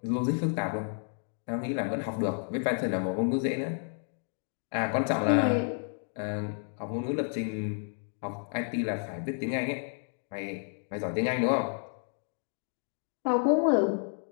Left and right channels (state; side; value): silent; right; 57 dB below the other